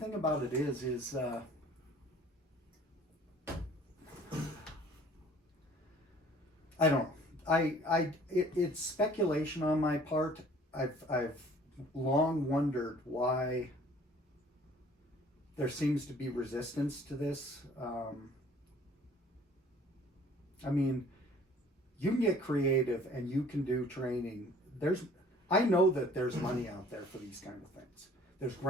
about it is I don't know. It's speculation on my part. I've long wondered why there seems to be resistance to this. I mean, you can get creative and you can do training. I know that there's money out there for these kind of things. There's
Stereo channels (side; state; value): both; normal; correlation 0.53